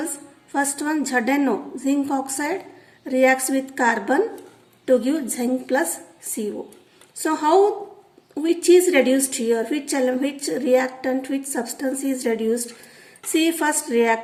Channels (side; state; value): both; identical; correlation 1.00